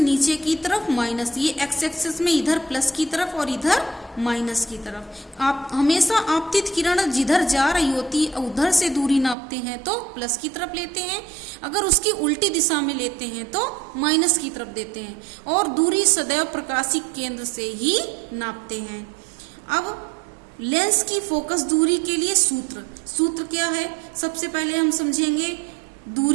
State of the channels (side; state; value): left; drops out; at 9.3 s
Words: की तरफ माइनस। ये एक्स एक्सिस में इधर प्लस की तरफ और इधर माइनस की तरफ। आप हमेशा आपतित किरण जिधर जा रही होती है उधर से दूरी नापते हैं तो प्लस की तरफ लेते हैं, अगर उसकी उल्टी दिशा में लेते हैं तो माइनस की तरफ देते हैं, और दूरी सदैव प्रकाशिक केंद्र से ही नापते हैं। अब लेंस की फोकस दूरी के लिए सूत्र क्या है, सबसे पहले हम समझेंगे